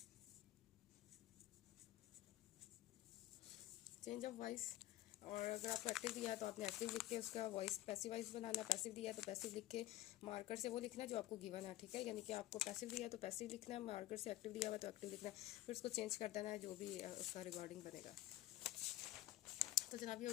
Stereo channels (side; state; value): right; quieter; 15.4 dB